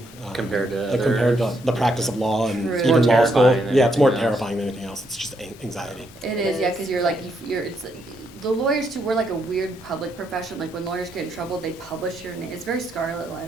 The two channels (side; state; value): both; normal; correlation 0.76